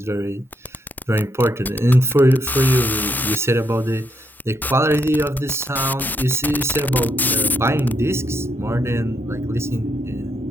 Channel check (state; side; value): normal; both; correlation 0.77